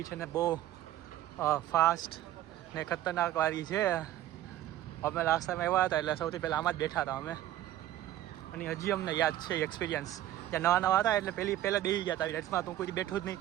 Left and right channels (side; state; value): left; quieter; 13.2 dB